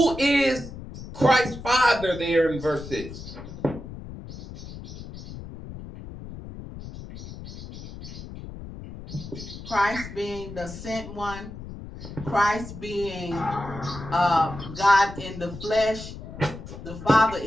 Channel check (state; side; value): noise; left; rumble, 12 dB below the sound